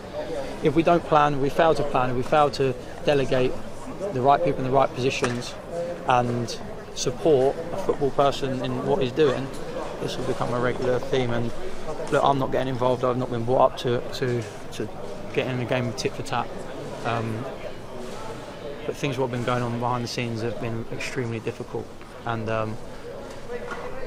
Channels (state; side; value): identical; both; correlation 1.00